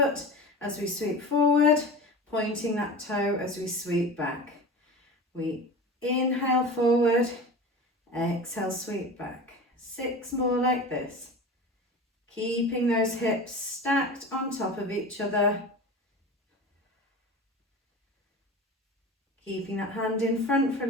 as we sweep forward, pointing that toe as we sweep back. We inhale forward, exhale, sweep back. 6 more like this. Keeping those hips stacked on top of each other. Keeping that hand in front for a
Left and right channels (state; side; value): normal; both; correlation 0.33